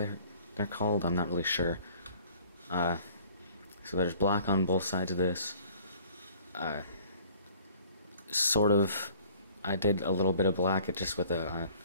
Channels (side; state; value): both; inverted; correlation -0.53